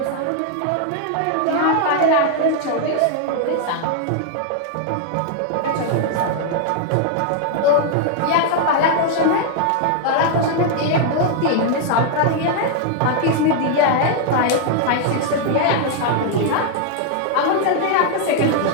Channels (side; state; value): both; different; correlation 0.00